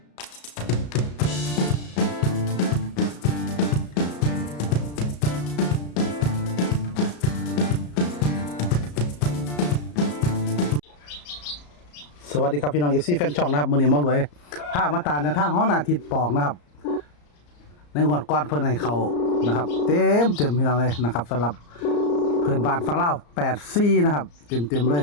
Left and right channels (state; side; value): late; right; 34 ms